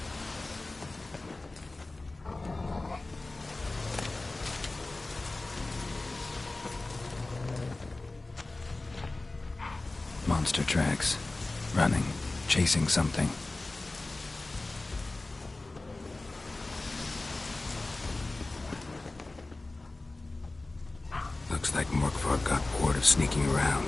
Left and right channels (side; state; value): right; quieter; 3.1 dB